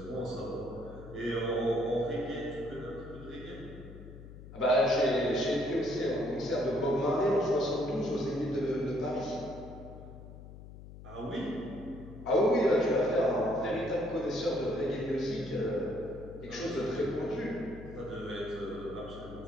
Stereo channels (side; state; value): left; noise; hum, 15 dB below the sound